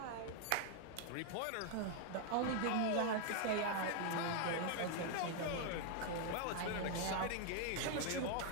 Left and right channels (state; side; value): different; both; correlation 0.00